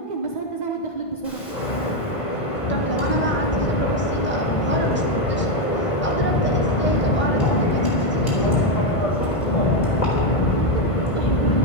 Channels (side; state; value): right; late; 1.5 ms